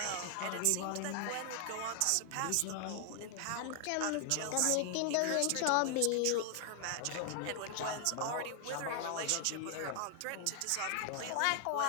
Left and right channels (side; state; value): both; different; correlation 0.00